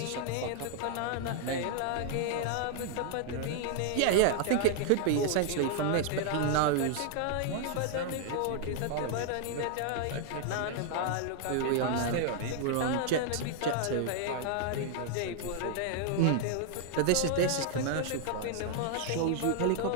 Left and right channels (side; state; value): both; different; correlation -0.01